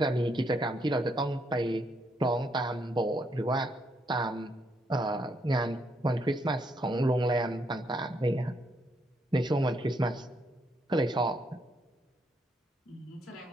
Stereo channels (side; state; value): both; normal; correlation 0.75